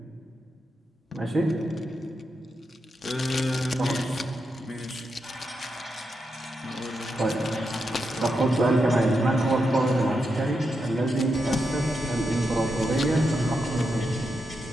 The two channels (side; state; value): both; normal; correlation 0.85